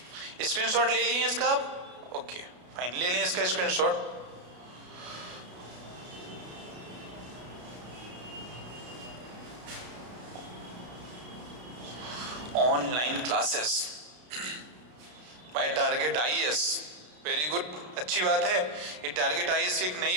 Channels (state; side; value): late; left; 33 ms